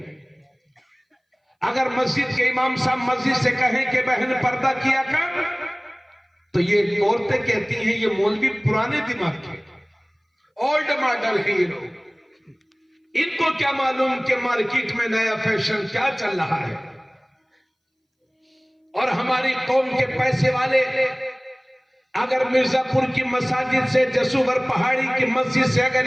अगर मस्जिद के इमाम साहब मस्जिद से कहें कि बहन पर्दा किया कर, तो ये औरतें कहती हैं ये मौलवी पुराने दिमाग के, ओल्ड मॉडल है ये लोग, इनको क्या मालूम कि मार्केट में नया फैशन क्या चल रहा है। और हमारी कौम के पैसे वाले अगर मिर्जापुर की मसाजिद से, जसूवर पहाड़ी की मस्जिद से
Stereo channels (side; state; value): both; identical; correlation 1.00